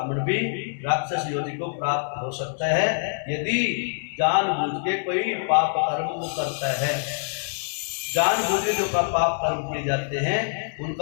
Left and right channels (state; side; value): silent; right; digital silence